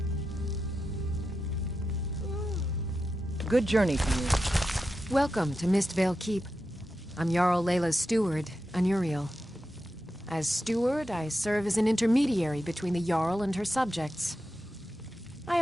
Good journey to you. Welcome to Mistvale Keep. I'm Jarl Layla's steward, Anuriel. As steward, I serve as an intermediary between the Jarl and her subjects. I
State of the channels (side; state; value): both; normal; correlation 0.89